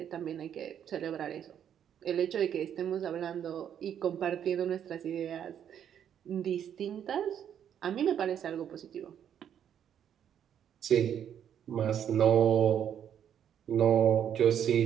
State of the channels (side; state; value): left; quieter; 9.2 dB